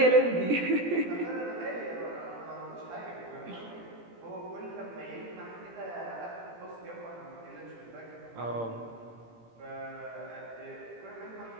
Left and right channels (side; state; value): left; late; 17 ms